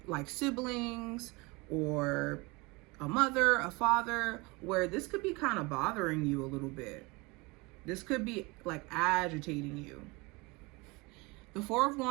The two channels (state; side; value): quieter; left; 25.5 dB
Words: siblings, or a mother, a father, where this could be kind of bothering you a little bit. This could be agitating you. The Four of